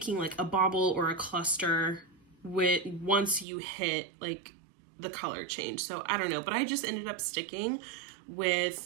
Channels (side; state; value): left; drops out; at 3.5 s